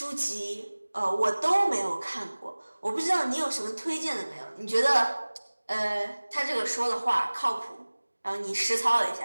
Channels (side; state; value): both; inverted; correlation -1.00